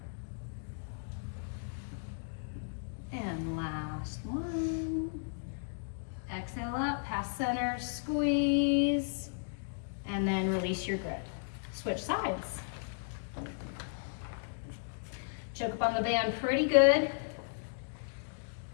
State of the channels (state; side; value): silent; right; digital silence